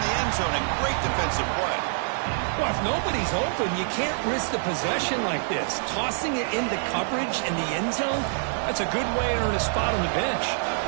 end zone. A great defensive play. Well, if nobody's open, you can't risk the possession like this. Tossing it into coverage in the end zone, that's a good way to earn a spot on the bench.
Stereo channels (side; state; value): left; silent; 61 dB below the other